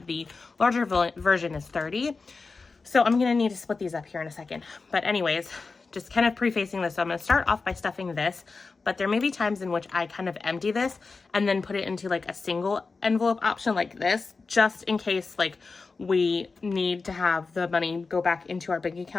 the larger version is 30. So I'm going to need to split these up here in a second. But anyways, just kind of prefacing this. So I'm going to start off by stuffing this, but there may be times in which I kind of empty this and then put it into like a single envelope option like this, just in case like we need to have the money go back into our bank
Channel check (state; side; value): quieter; right; 4.2 dB